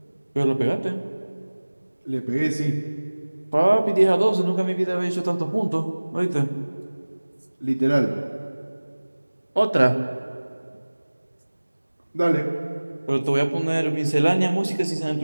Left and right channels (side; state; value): both; inverted; correlation -1.00